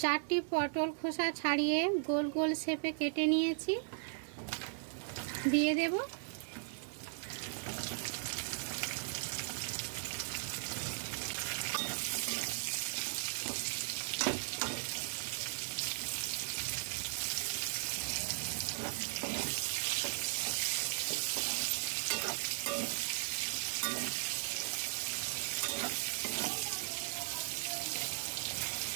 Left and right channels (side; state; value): left; silent; digital silence